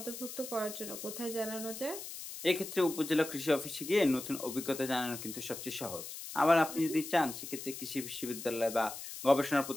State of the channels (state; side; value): noise; left; hiss, 10 dB below the sound